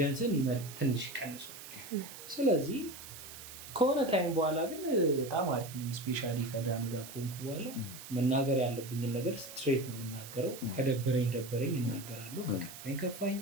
ትንሽ ይቀንሷል። ስለዚህ ከሆነ ታይም በኋላ ግን በጣም አሪፍ ነኝ። ስፔሻሊ ከዳኑ ጋር ከሆንኩ በኋላ መናገር ያለብኝን ነገር ስትሬት ነው የምናገረው። ከደበረኝ እናገራለሁ፣ ከከፋኝ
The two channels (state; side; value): noise; right; hiss, 13 dB below the sound